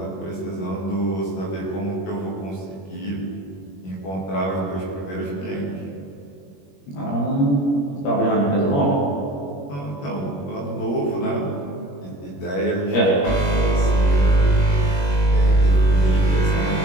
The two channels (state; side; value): late; right; 21 ms